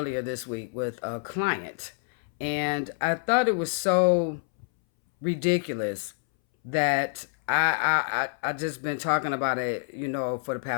this week with a client. And I thought it was so ridiculous that I just been talking about it, for the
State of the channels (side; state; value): right; silent; 60 dB below the other